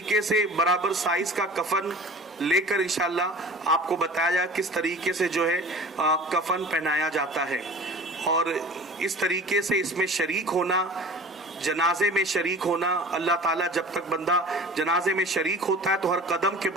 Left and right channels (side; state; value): both; normal; correlation 0.41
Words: से बराबर साइज का कफन लेकर इंशाल्लाह आपको बताया जाए किस तरीके से जो है कफन पहनाया जाता है। और इस तरीके से इसमें शरीक होना, जनाजे में शरीक होना, अल्लाह ताला जब तक बंदा जनाजे में शरीक होता है तो हर कदम के